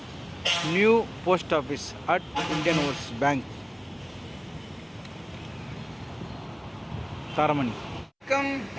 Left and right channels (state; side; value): identical; both; correlation 1.00